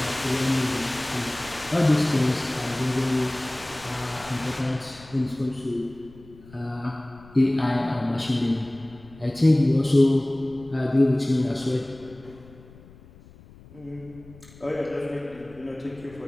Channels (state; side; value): noise; left; rumble, 22 dB below the sound